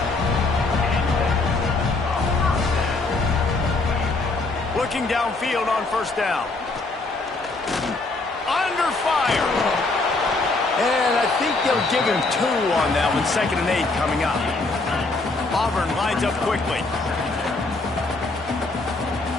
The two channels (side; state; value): right; quieter; 3.4 dB